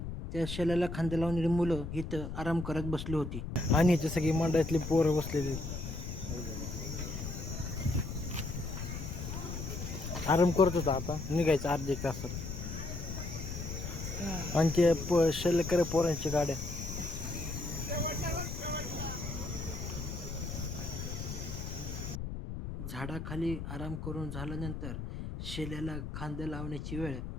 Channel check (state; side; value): noise; left; rumble, 6 dB below the sound